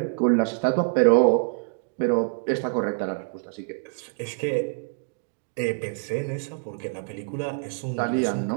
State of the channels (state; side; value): silent; left; digital silence